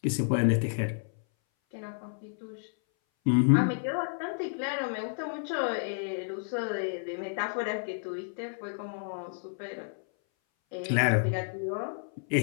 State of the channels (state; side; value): silent; right; 57 dB below the other